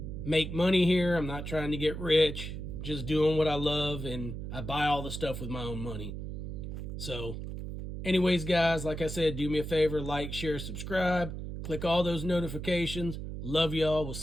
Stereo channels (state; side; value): noise; right; hum, 7 dB below the sound